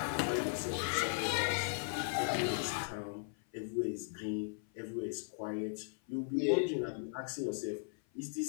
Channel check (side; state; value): right; silent; 53 dB below the other